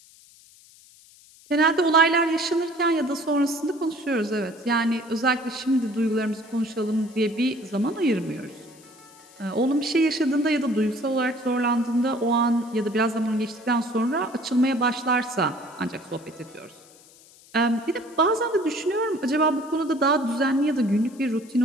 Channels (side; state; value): left; noise; hiss, 25 dB below the sound